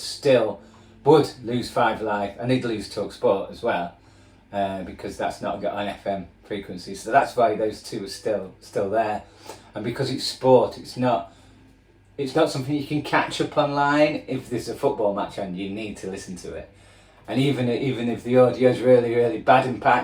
lose 5 Live, and they'd lose TalkSport as well, because that's not got an FM frequency. So that's why those two are still there. And because it's sport, it's not something you can catch up online. If there's a football match on, you need to listen to it. And even if the audio's really, really bad and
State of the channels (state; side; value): identical; both; correlation 1.00